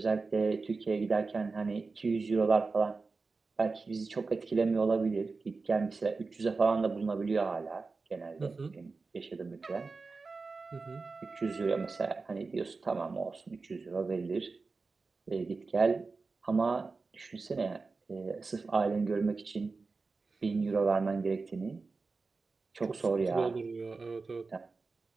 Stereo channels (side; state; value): left; quieter; 4.1 dB